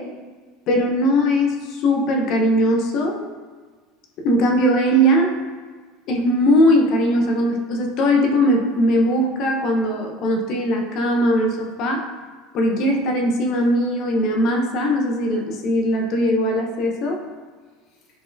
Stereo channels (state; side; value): normal; both; correlation 0.43